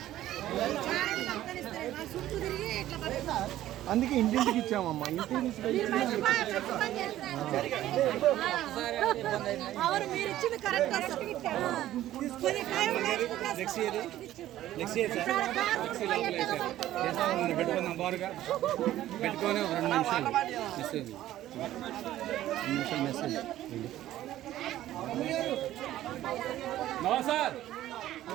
అందుకే ఇంటింటికి ఇచ్చామమ్మా. ఇంటికి పెట్టుకుందాం బారుగా పెట్టుకొని ఒక 2 నిమిషాలు మెసేజ్. నో సార్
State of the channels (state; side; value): quieter; left; 13.7 dB